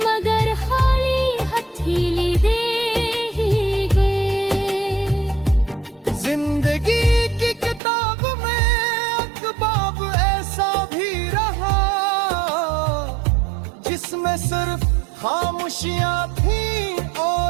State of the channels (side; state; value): left; drops out; at 7.8 s